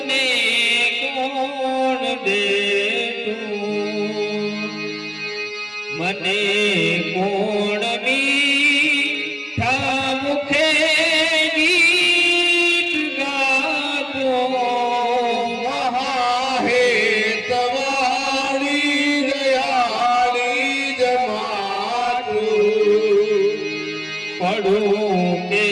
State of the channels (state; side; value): identical; both; correlation 1.00